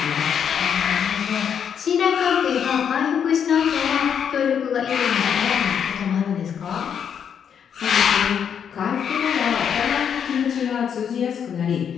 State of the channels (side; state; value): right; quieter; 7.9 dB